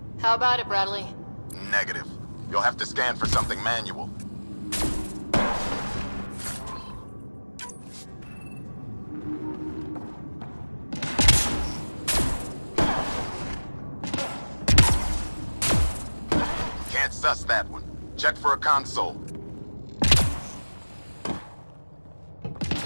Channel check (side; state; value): both; inverted; correlation -1.00